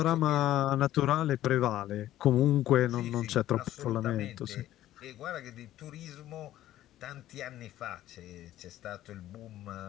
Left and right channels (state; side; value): quieter; right; 13.6 dB